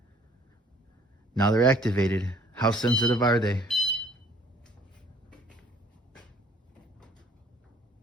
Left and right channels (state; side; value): normal; both; correlation 0.57